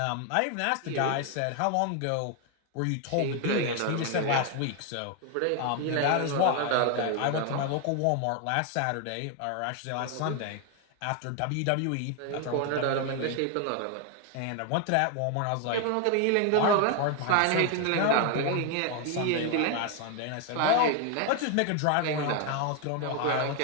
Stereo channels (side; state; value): both; different; correlation 0.01